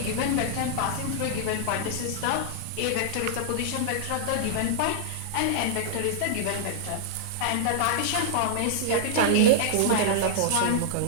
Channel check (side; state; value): both; different; correlation -0.01